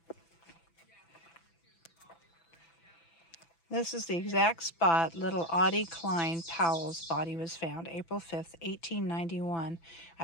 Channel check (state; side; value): late; right; 6.0 ms